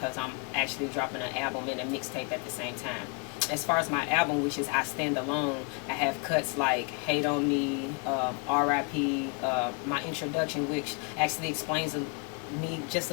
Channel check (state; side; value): quieter; right; 33.4 dB